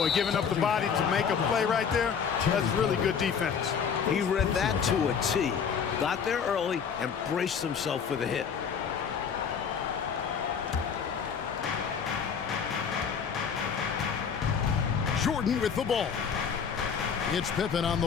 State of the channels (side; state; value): right; quieter; 6.8 dB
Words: giving up the body to make a play right there, that's really good defense. He read that to a T. Got there early and braced himself for the hit. Jordan with the ball. It's Pippen on the